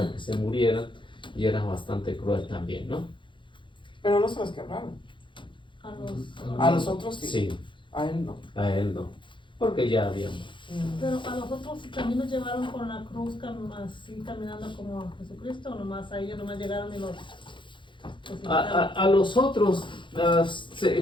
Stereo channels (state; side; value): late; right; 0.23 ms